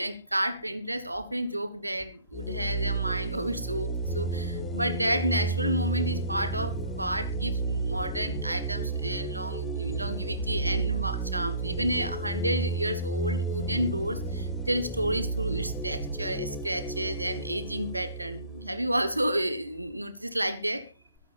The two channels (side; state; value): both; inverted; correlation -0.55